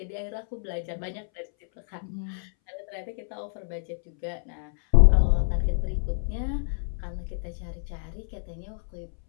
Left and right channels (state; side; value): silent; right; 60 dB below the other